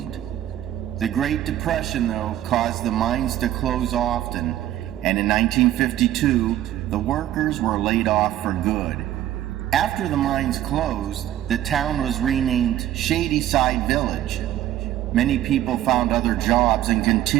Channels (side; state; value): left; quieter; 12.8 dB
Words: The Great Depression, though, caused the mines to close often, and in 1952, the workers were laid off for good. After the mines closed, the town was renamed Shadyside Village. Many people found other jobs and